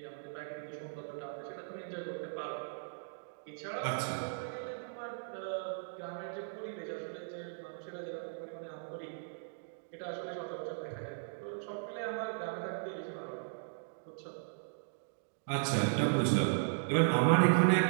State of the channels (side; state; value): left; silent; digital silence